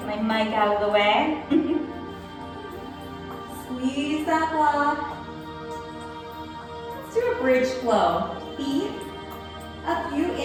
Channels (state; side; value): identical; both; correlation 1.00